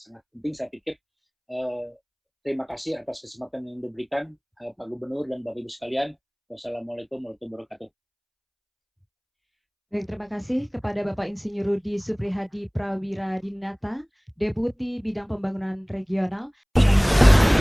penting saya pikir. Terima kasih atas kesempatan yang diberikan Pak Gubernur dan Bapak Ibu sekalian. Wassalamualaikum warahmatullahi wabarakatuh. Baik, terima kasih kepada Bapak Insinyur Rudi Suprihadi Prawiradinata, Deputi Bidang Pembangunan Regional.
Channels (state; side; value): identical; both; correlation 1.00